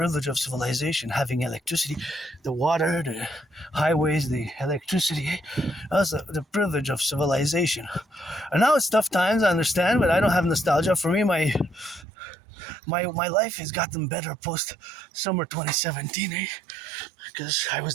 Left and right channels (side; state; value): left; drops out; at 12.1 s